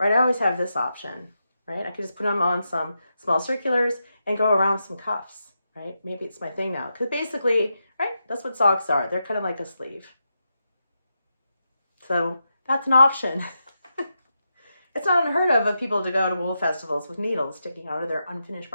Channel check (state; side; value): inverted; both; correlation -0.86